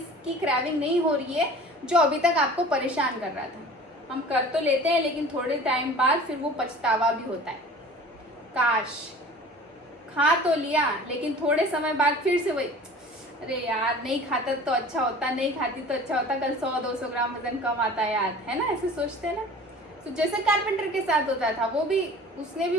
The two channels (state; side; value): normal; both; correlation 0.43